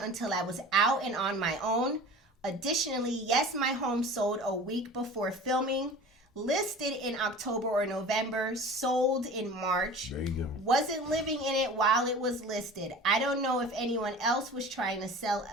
I was out and on my own. Additionally, yes, my home sold a week before filming. Listed in October or November, sold in March. There you go. Wasn't living in it while it was listed. I don't know if anyone else was trying to sell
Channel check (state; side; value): normal; both; correlation 0.39